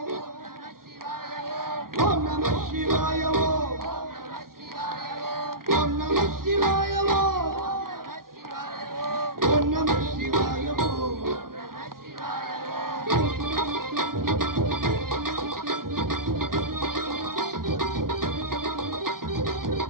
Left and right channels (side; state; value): left; late; 0.92 ms